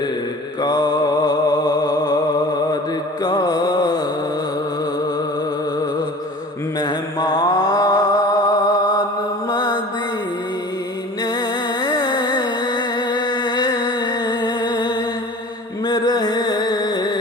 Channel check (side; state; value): both; normal; correlation 0.41